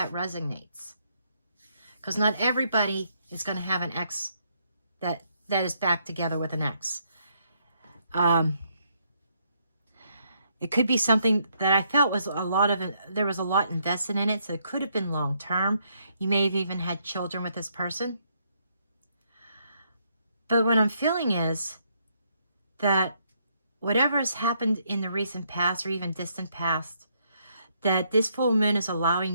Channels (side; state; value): both; inverted; correlation -0.73